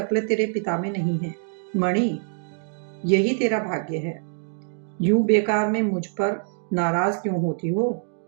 तेरे पिता में नहीं है मणि, यही तेरा भाग्य है। यूं बेकार में मुझ पर नाराज क्यों होती हो?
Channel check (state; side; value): silent; left; digital silence